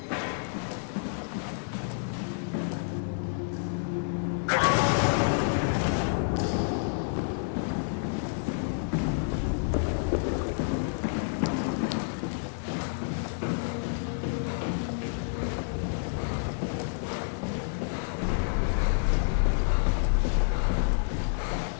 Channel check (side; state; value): right; silent; digital silence